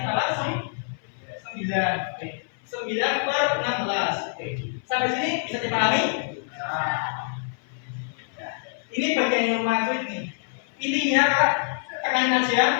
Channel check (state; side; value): silent; right; 58 dB below the other